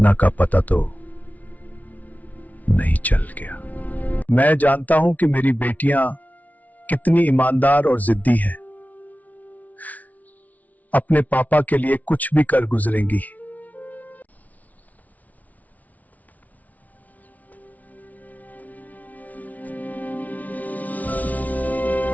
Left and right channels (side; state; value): right; late; 0.073 ms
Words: का पता तो नहीं चल गया? मैं जानता हूं कि मेरी बेटियां कितनी ईमानदार और जिद्दी हैं। अपने पापा के लिए कुछ भी कर गुजरेंगी।